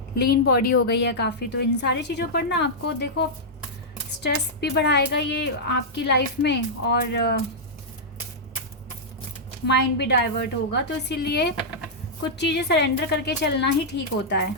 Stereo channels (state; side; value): normal; both; correlation -0.09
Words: लीन बॉडी हो गई है काफ़ी। तो इन सारी चीज़ों पर ना आपको देखो स्ट्रेस भी बढ़ाएगा ये आपकी लाइफ में, और माइंड भी डाइवर्ट होगा। तो इसीलिए कुछ चीज़ें सरेंडर करके चलना ही ठीक होता है।